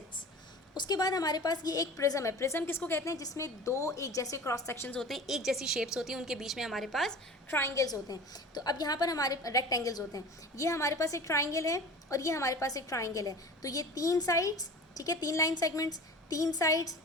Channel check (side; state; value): both; normal; correlation 0.38